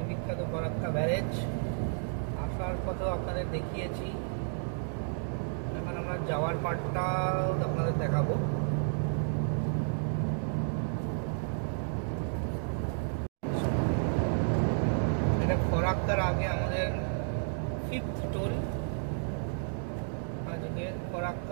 বিখ্যাত ফরাক্কা ব্যারেজ। আসার পথেও আপনাদের দেখিয়েছি, এখন আমরা যাওয়ার পার্টটাও আপনাদের দেখাবো। এটা ফরাক্কার আগে আমাদের 5th টোল। আজকে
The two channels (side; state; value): left; silent; digital silence